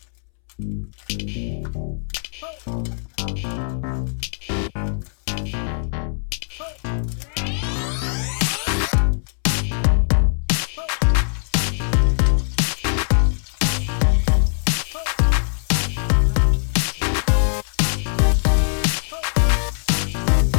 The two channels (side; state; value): right; silent; 65 dB below the other